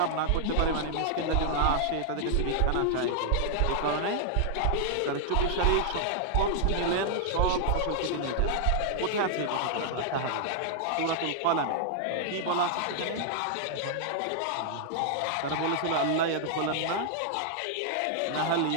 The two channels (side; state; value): both; different; correlation -0.01